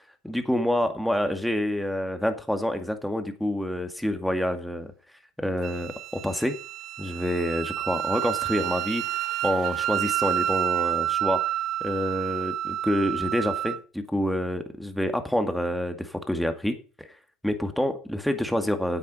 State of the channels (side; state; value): both; normal; correlation 0.79